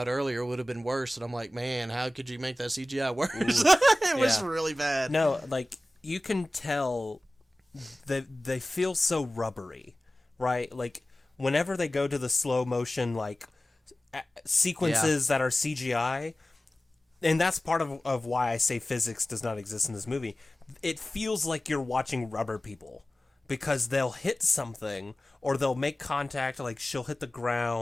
earlier, it would have been worse. And I'm like, man, how could you make that CGI worse? It was really bad. No, like, you can tell that they feel so rubbery, right? Like, whenever they go to the slow motion, like, sequences that are CGI... And that's part of why I say physics does not exist in this movie. It feels like you're watching rubber people, because they'll hit something, or they'll make contact, like she'll hit the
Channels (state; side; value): normal; both; correlation 0.97